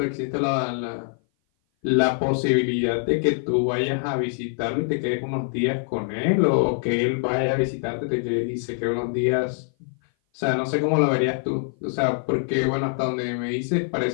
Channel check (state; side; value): silent; right; 57 dB below the other